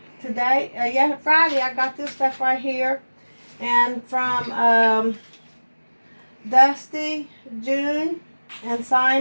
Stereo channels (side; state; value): both; inverted; correlation -1.00